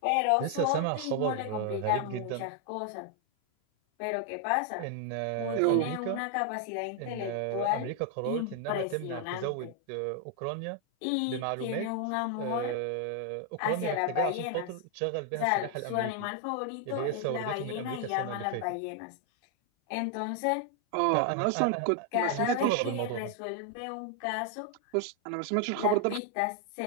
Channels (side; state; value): both; different; correlation 0.00